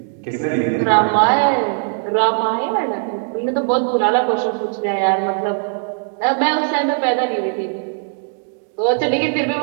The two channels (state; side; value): silent; left; 63 dB below the other